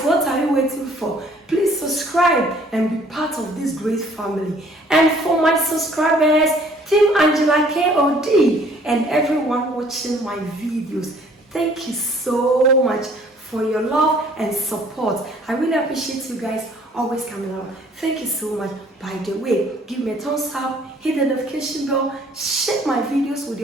what are you waiting for? Please subscribe and be part of this great family. And for my subscribers, Team Angela KOD and everyone watching my videos, thank you so much for your love and support. I really appreciate you guys always coming out. Thank you so much. By the way, give me a thumbs up, hit the notification bell, share my videos with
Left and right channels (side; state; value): both; normal; correlation 0.58